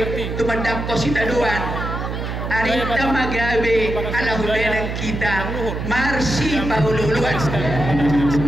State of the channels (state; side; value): noise; right; hum, 4 dB below the sound